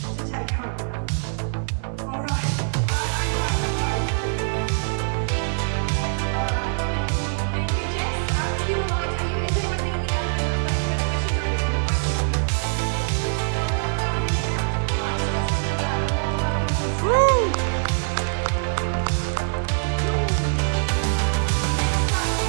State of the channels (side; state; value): left; silent; digital silence